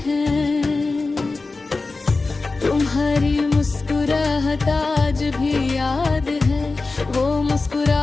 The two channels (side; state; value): right; quieter; 3.7 dB